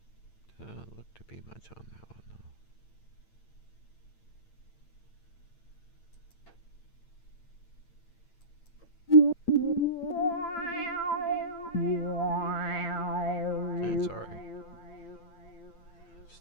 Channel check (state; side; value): late; right; 8.8 ms